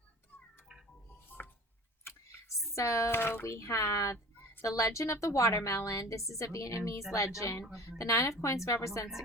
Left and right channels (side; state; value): both; normal; correlation 0.41